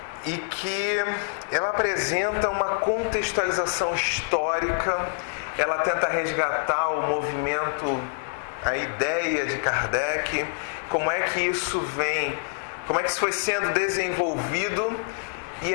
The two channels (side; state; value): right; silent; digital silence